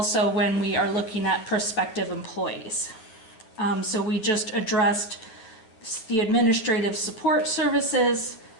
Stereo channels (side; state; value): right; late; 9.2 ms